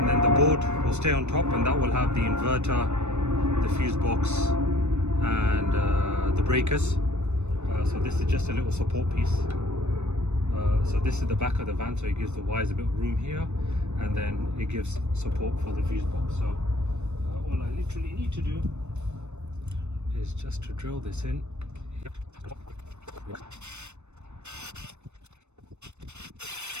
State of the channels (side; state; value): left; late; 0.82 ms